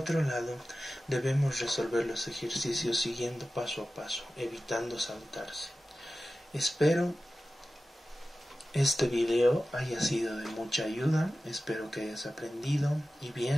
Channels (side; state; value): both; normal; correlation 0.95